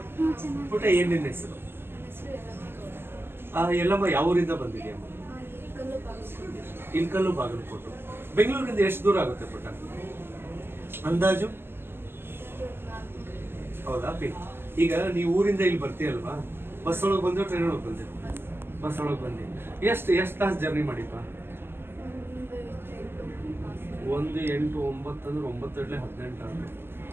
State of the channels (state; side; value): late; left; 0.11 ms